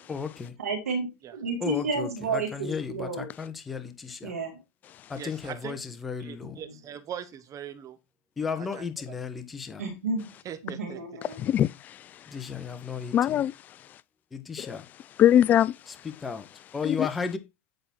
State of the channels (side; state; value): right; quieter; 5.8 dB